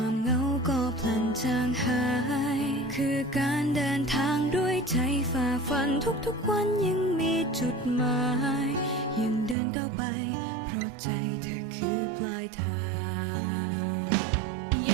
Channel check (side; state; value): left; drops out; at 9.6 s